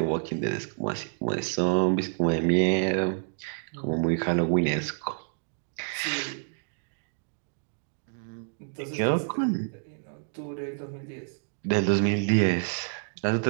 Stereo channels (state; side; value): silent; left; digital silence